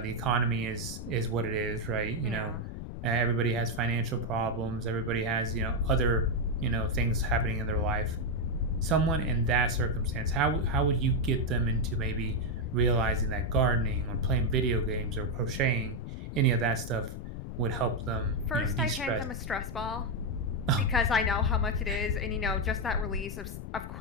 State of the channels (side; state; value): left; noise; rumble, 8 dB below the sound